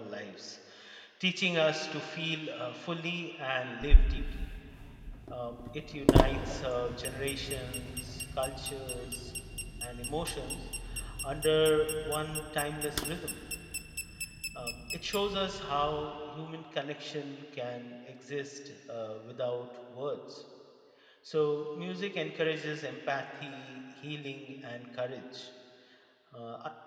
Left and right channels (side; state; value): both; identical; correlation 1.00